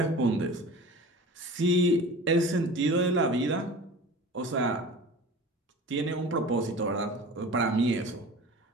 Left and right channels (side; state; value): both; normal; correlation 0.38